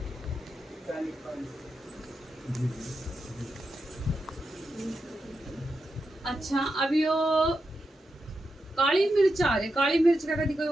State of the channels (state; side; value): normal; both; correlation 0.87